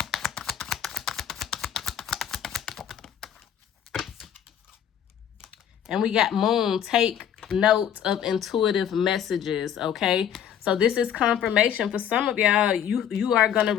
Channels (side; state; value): right; quieter; 9.5 dB